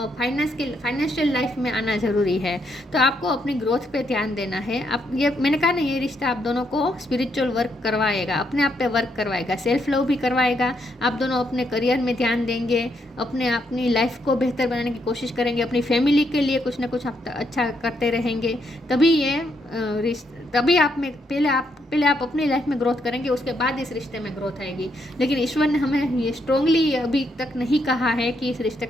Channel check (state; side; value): normal; both; correlation 0.77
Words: फाइनेंशियल लाइफ में आना ज़रूरी है। तो आपको अपनी ग्रोथ पे ध्यान देना है। आप ये मैंने कहा ना, ये रिश्ता आप दोनों को स्पिरिचुअल वर्क करवाएगा, अपने आप पे वर्क करवाएगा, सेल्फ लव भी करवाएगा। आप दोनों अपने करियर में ध्यान देंगे, अपनी लाइफ को बेहतर बनाने की कोशिश करेंगे, अपनी फैमिली के लिए कुछ ना कुछ आप अच्छा करते रहेंगे। तभी आप में पहले आप अपनी लाइफ में ग्रोथ करेंगे, उसके बाद इस रिश्ते में ग्रोथ आएगी। लेकिन ईश्वर ने हमें ये स्ट्रांगली अभी तक नहीं कहा है कि इस रिश्ते